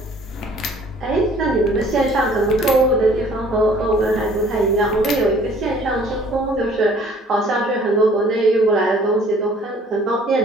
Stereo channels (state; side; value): normal; both; correlation 0.55